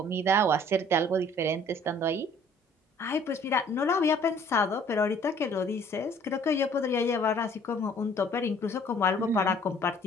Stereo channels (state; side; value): normal; both; correlation 0.56